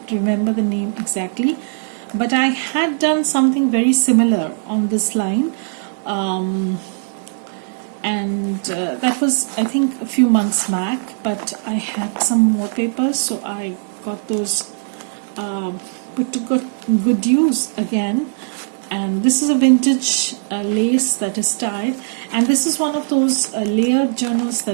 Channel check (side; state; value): left; silent; digital silence